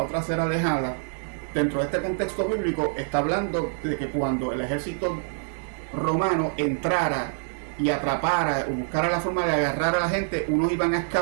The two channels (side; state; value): left; silent; digital silence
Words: otra será dejada, dentro de este contexto bíblico está hablando de que cuando el ejército romano entrara y atrapara o buscara la forma de agarrar a la gente, unos iban a